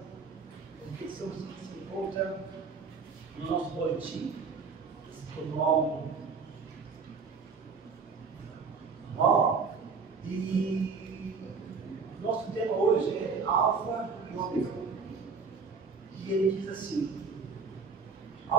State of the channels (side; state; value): left; quieter; 5.0 dB